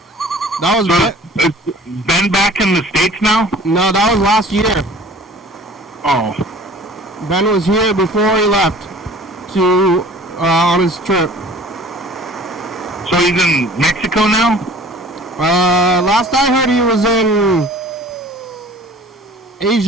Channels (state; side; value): normal; both; correlation 0.47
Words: That was So, Ben back in the States now? no, that was last year. Oh. Ben was here before he left to on his trip. So he's in Mexico now? Last I heard he was in